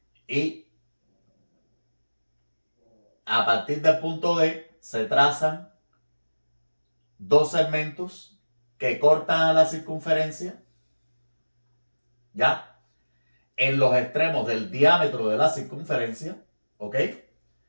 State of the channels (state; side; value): inverted; both; correlation -1.00